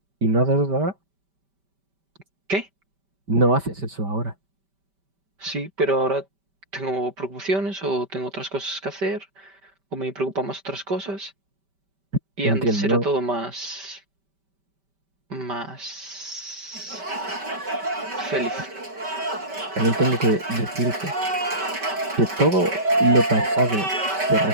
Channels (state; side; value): late; left; 5.1 ms